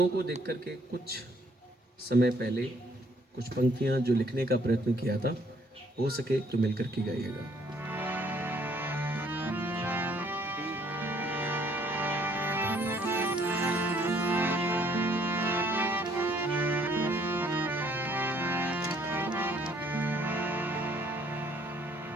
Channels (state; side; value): normal; both; correlation 0.64